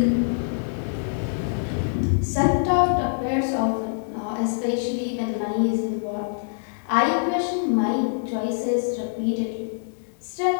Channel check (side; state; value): right; silent; digital silence